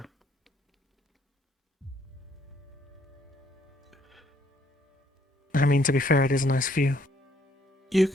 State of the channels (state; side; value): normal; both; correlation 0.67